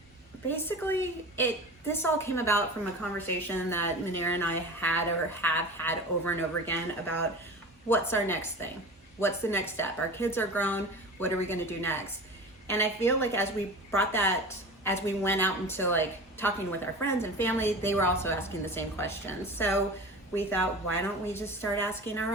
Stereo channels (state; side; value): normal; both; correlation 0.34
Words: Basically, this all came about from a conversation that Manera and I have had over and over again about what's our next thing? What's the next step? Our kids are grown. What are we going to do next? And I feel like as we went out into talking with our friends and family, they were also asking the same questions. So we thought, why don't we just start asking our